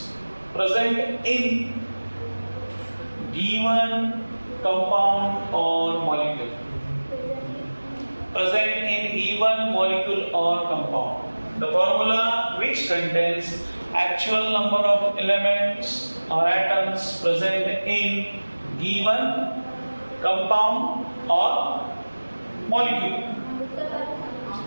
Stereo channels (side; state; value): both; inverted; correlation -1.00